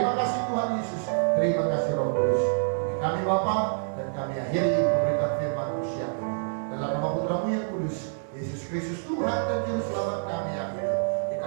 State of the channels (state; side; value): silent; left; digital silence